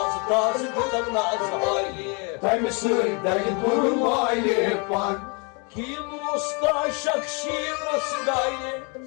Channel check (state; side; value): quieter; right; 33.1 dB